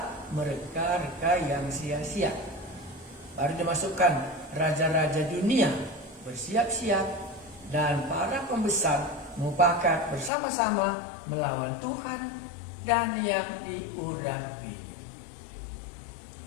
mereka-reka yang sia-sia? Baru dimasukkan raja-raja dunia bersiap-siap dan para pembesar mufakat bersama-sama melawan Tuhan dan yang diurapi.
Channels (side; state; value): right; drops out; at 10.3 s